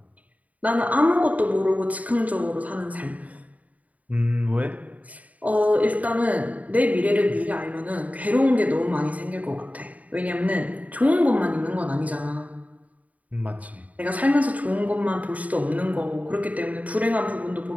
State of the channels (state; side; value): late; left; 0.071 ms